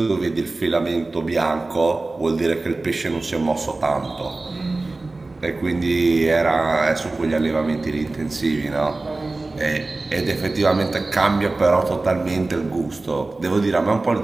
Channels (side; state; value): left; quieter; 3.2 dB